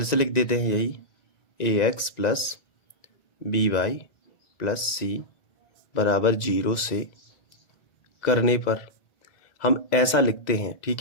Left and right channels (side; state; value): right; late; 1.9 ms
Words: से लिख देते हैं यही ax plus by plus c बराबर 0 से करने पर हम ऐसा लिखते हैं,